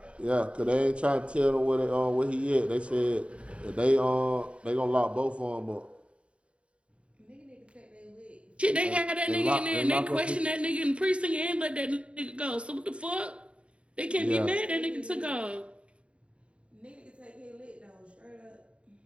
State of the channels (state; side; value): late; left; 0.059 ms